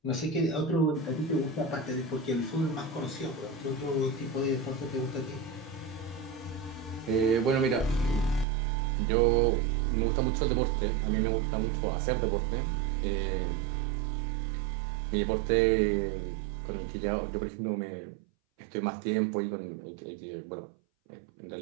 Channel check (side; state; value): left; drops out; at 8.5 s